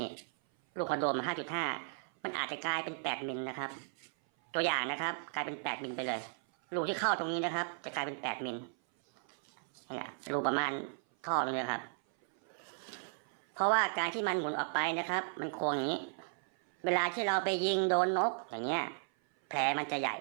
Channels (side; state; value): left; silent; 54 dB below the other